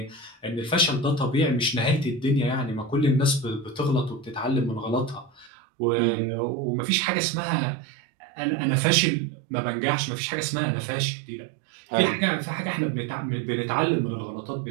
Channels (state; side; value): drops out; left; at 5.5 s